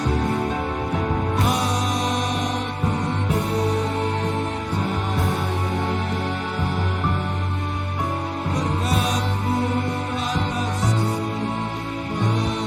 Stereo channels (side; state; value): both; identical; correlation 1.00